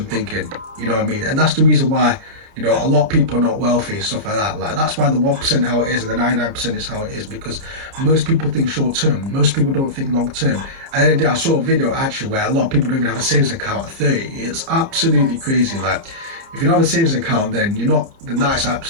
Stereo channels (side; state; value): left; late; 30 ms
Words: thinking, you know what I mean, and that's the reason why, you know, a lot of people are not wealthy and stuff like that. Like, that's why the 1% how it is and the 99% is how it is, because most people think short term, most people don't think long term. And then I saw a video actually where a lot of people don't even have a savings account at 30. It's absolutely crazy. Like, if you don't have a savings account, then that's